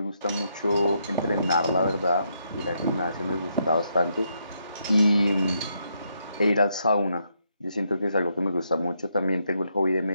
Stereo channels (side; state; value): both; inverted; correlation -0.78